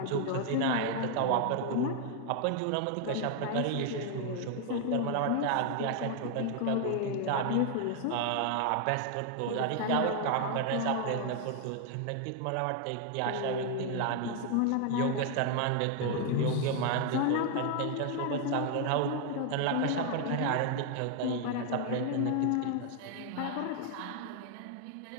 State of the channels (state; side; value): different; both; correlation 0.00